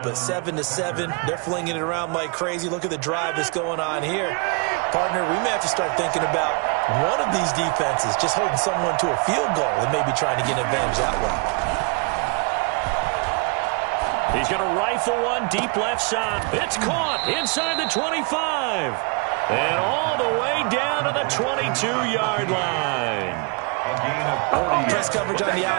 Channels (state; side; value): quieter; left; 32.5 dB